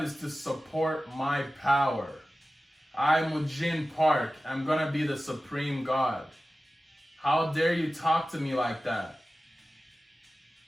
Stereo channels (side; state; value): both; normal; correlation 0.95